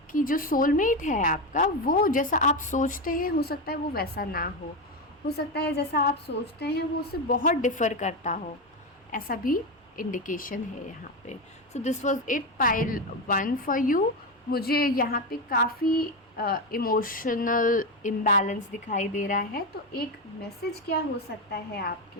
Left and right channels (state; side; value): normal; both; correlation 0.14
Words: कि जो सोलमेट है आपका, वो जैसा आप सोचते हैं हो सकता है वो वैसा ना हो सकता है जैसा आप सोचते हैं वो उससे बहुत डिफ़र करता हो, ऐसा भी इंडिकेशन है यहाँ पे। So this was it pile 1 for you. मुझे यहाँ पे काफ़ी इमोशनल इम्बैलेंस दिखाई दे रहा है, तो एक मैसेज क्या हो सकता है आपके